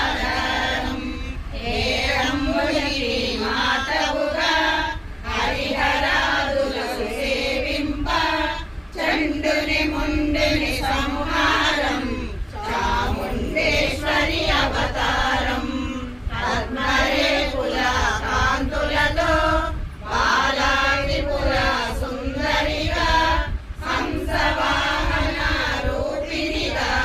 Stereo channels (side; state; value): both; identical; correlation 1.00